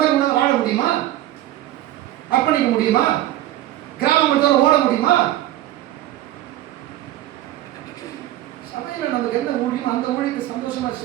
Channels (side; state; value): left; quieter; 14.2 dB